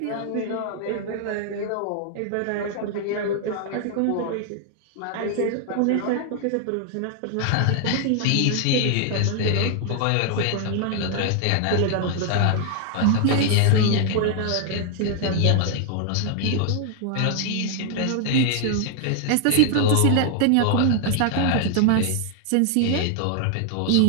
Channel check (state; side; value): different; both; correlation 0.00